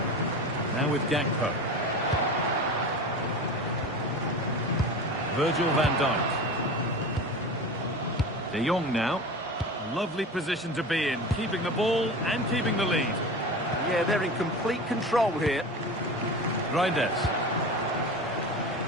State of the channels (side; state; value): both; normal; correlation 0.31